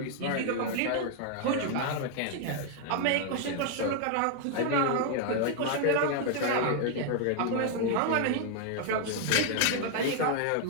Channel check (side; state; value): both; different; correlation 0.00